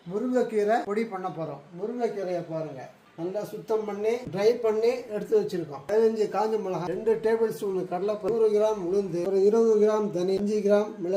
முருங்கைக்கீரை பொடி பண்ண போறோம். முருங்கைக்கீரையை பாருங்க, நல்லா சுத்தம் பண்ணி ட்ரை பண்ணி எடுத்து வச்சிருக்கோம். 15 காஞ்ச மிளகாய், 2 டேபிள் ஸ்பூன் கடலைப்பருப்பு, 100 கிராம் உளுந்து, ஒரு 20 கிராம் தனி, 5 கிராம்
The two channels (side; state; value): both; identical; correlation 1.00